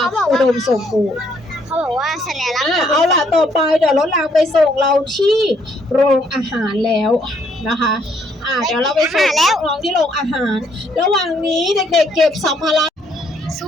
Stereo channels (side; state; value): both; normal; correlation 0.69